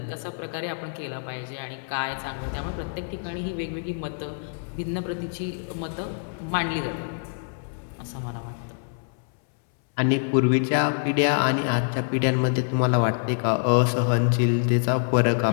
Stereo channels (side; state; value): right; silent; 61 dB below the other